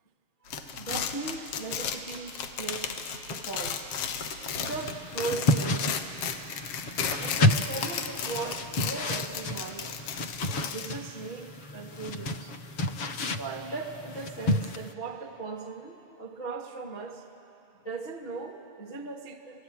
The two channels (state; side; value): late; right; 7.4 ms